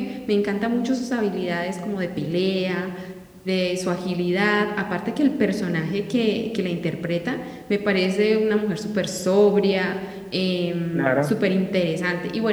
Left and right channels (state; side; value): identical; both; correlation 1.00